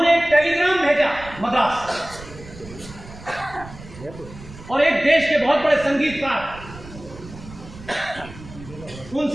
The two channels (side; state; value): right; noise; rumble, 16 dB below the sound